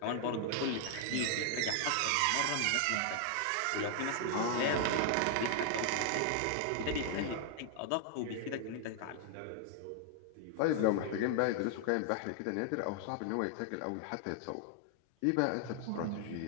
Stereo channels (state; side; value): different; both; correlation 0.00